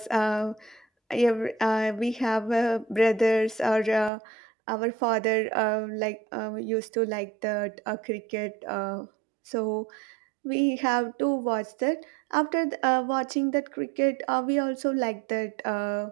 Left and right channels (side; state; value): left; drops out; at 4.1 s